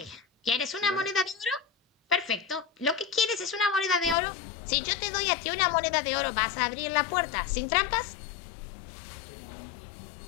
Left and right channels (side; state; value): right; drops out; at 4.2 s